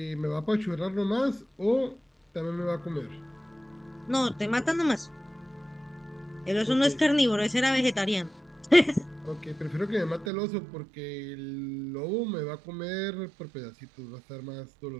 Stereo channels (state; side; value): drops out; left; at 10.3 s